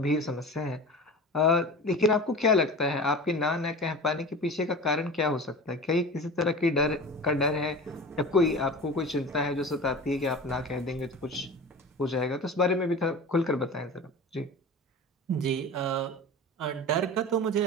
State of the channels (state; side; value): normal; both; correlation 0.34